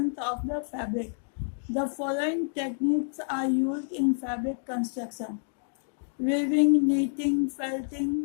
of the fabric. The following techniques are used in fabric construction: weaving, knitting, felting,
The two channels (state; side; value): silent; right; digital silence